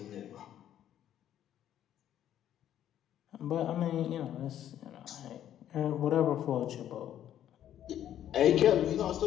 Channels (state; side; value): quieter; right; 11.0 dB